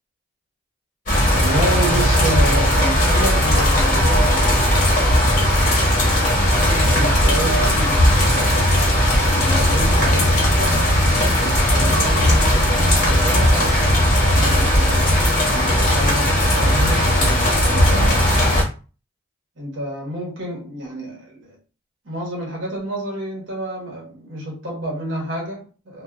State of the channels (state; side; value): normal; both; correlation 0.57